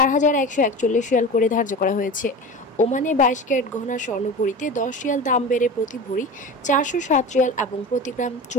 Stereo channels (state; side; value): normal; both; correlation 0.31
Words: রিয়াল করে ধার্য করা হয়েছে। ওমানে 22 ক্যারেট গহনা স্বর্ণ ভরিতে 10 রিয়াল দাম বেড়ে প্রতি ভরি 407 রিয়াল এবং প্রতি গ্রাম